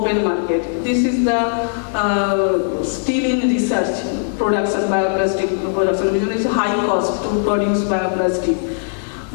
market. This is the still in research production, bioplastic production, because it's high cost to produce bioplastic.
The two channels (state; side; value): silent; right; 67 dB below the other